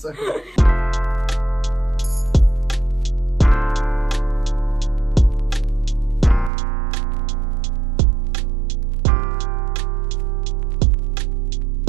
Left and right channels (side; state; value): left; drops out; at 6.5 s